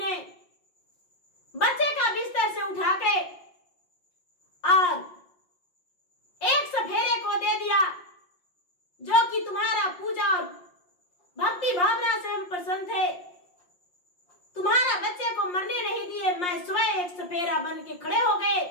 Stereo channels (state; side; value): late; right; 5.6 ms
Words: बच्चे का बिस्तर से उठा के और एक सफेरे को दे दिया, जो कि तुम्हारा पूजा और भक्ति भावना से हम प्रसन्न थे। तुम्हारा बच्चे को मरने नहीं दिए, मैं स्वयं एक सफेरा बन के खड़े हो गए